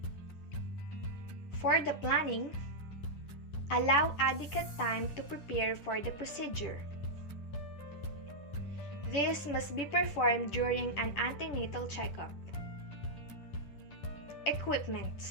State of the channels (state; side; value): late; right; 10 ms